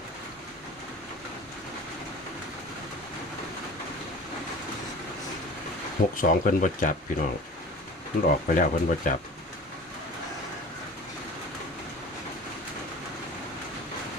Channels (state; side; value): normal; both; correlation 0.40